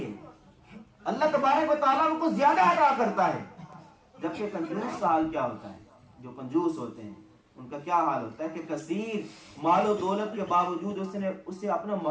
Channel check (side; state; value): both; identical; correlation 1.00